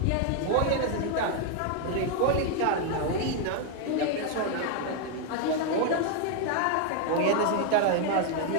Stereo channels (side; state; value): both; different; correlation 0.00